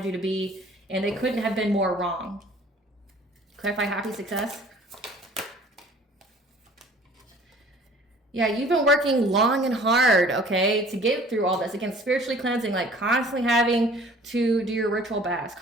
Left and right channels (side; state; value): both; normal; correlation 0.50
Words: you to be. And they couldn't have been more wrong. Clarify happy success. Yeah, you've been working long and hard, okay, to get through all this. Again, spiritually cleansing, like constantly having to do your ritual baths,